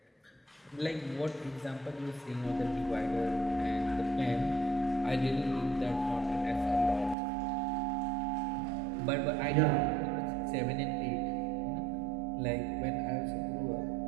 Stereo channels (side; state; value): left; drops out; at 7.2 s